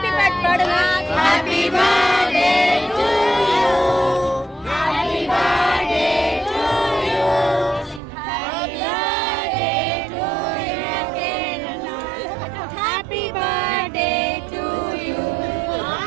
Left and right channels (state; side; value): drops out; left; at 8.0 s